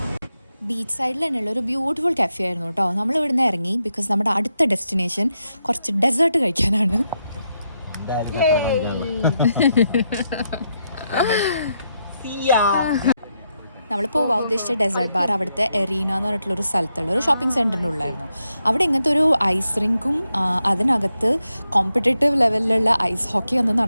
ബീച്ച് സൈഡിൽ തന്നെയുള്ള ഒരു ബ്യൂട്ടിഫുൾ കഫേ ആയിരുന്നു കേട്ടോ. നമ്മൾ ഇവിടുന്ന് ഇറങ്ങി ബിക്കോസ് നമ്മുടെ അടുത്ത ഡെസ്റ്റിനേഷൻ കുറച്ച് ഡെസേർട്ട് കഴിക്കാനാണ്. നമ്മൾ പോവാൻ ഉദ്ദേശിച്ച ഡെസേർട്ട് ബാർ അവിടുത്തെ എറീന എന്ന് പറഞ്ഞിട്ടുള്ളൊരു സ്ഥലത്തുള്ള ഒരു ഷോപ്പിംഗ് സെൻറ്ററിൻ്റെ ഉള്ളായിരുന്നു. അവിടെ ഇങ്ങനത്തെ ഒരു ഐസ് റിങ്കും അതിനകത്ത് കോമ്പറ്റേറ്റീവ് ലെവലിലുള്ള ഐസ് ഹോക്കി ഒന്നും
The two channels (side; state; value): both; inverted; correlation -0.83